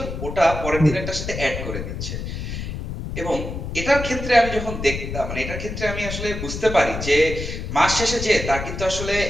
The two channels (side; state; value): left; noise; rumble, 6 dB below the sound